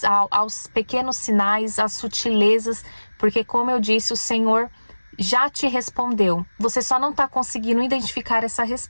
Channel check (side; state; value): both; inverted; correlation -1.00